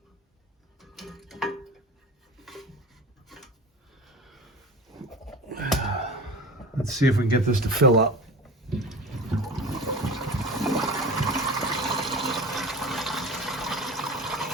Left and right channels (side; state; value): both; normal; correlation 0.34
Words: Let's see if we can get this to fill up.